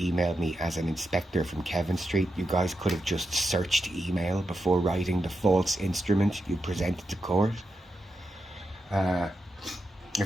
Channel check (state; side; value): normal; both; correlation 0.87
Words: me as an inspector from Kevin Street. You guys could have just searched email before writing the false instrument you presented to court.